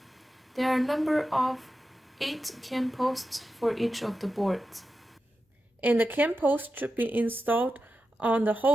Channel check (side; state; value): both; normal; correlation 0.91